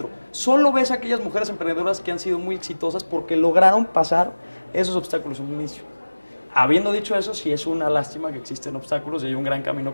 Solo ves a aquellas mujeres emprendedoras que han sido muy exitosas porque lograron pasar esos obstáculos en un inicio. Habiendo dicho eso, sí es una lástima que existen obstáculos y hay un gran camino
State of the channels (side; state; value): both; inverted; correlation -1.00